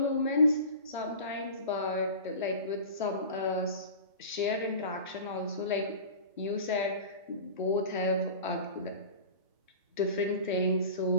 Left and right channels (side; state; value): both; inverted; correlation -0.36